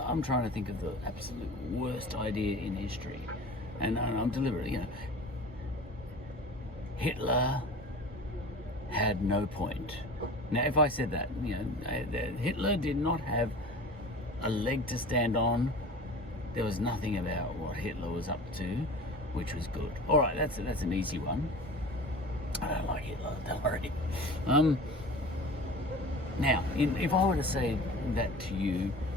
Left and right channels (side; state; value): both; normal; correlation 0.38